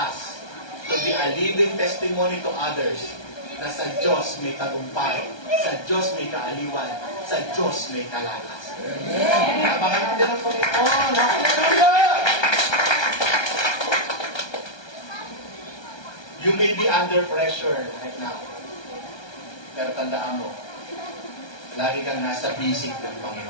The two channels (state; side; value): late; right; 1.2 ms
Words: to be a living testimony to others na sa Diyos may tagumpay, sa Diyos may kaaliwan, sa Diyos may kalakasan. Abangan natin ang Panginoon. Hallelujah! You may be under pressure right now. Pero tandaan mo, lagi kang nasa bisig ng